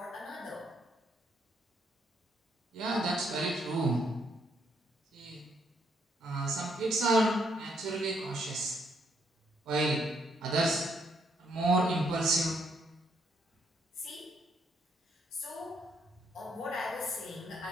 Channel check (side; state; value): both; normal; correlation 0.73